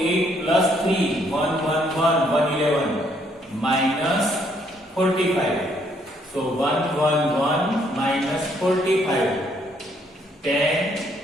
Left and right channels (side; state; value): both; normal; correlation 0.69